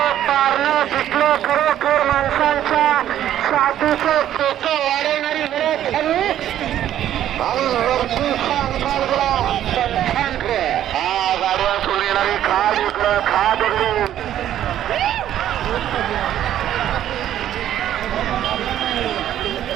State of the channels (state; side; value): quieter; left; 11.5 dB